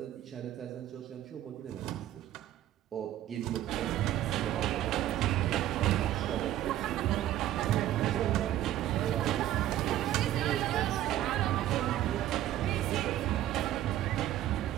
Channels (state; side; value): quieter; left; 12.9 dB